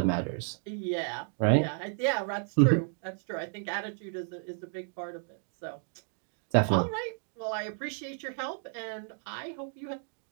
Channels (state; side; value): silent; left; 56 dB below the other